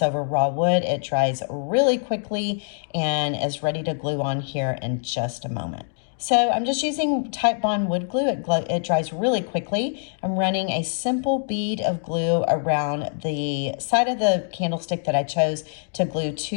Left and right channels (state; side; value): silent; right; digital silence